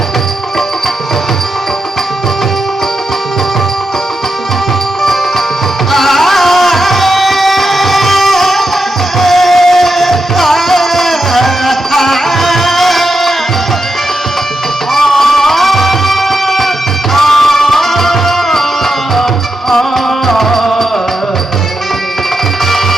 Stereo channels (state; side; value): normal; both; correlation 0.86